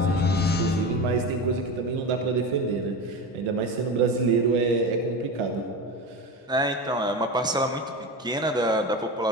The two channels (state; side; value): normal; both; correlation 0.25